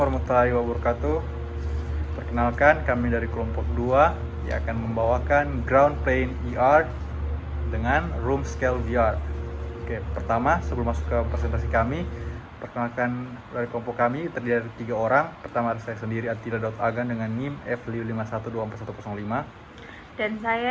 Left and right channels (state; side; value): identical; both; correlation 1.00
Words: wabarakatuh. Perkenalkan, kami dari kelompok 2 yang akan membawakan ground plane ER dengan room scale VR. Oke, pertama sebelum masuk ke presentasi kami, perkenalkan dari kelompok kami terdiri dari 3 orang. Pertama ada saya sendiri, Attila Daud Agan dengan NIM F551241105. Dan